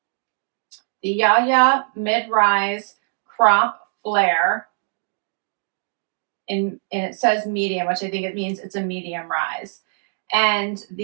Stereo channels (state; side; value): silent; left; 63 dB below the other